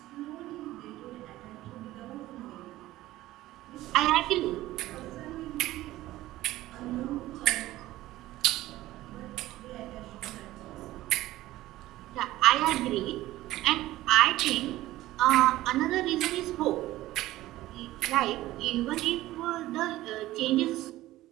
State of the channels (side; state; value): left; quieter; 16.1 dB